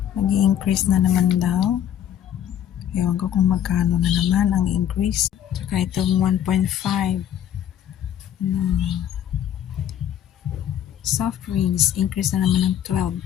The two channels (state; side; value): quieter; right; 10.3 dB